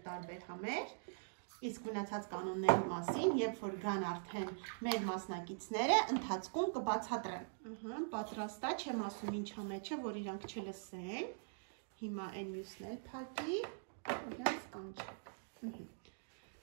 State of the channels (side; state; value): left; silent; digital silence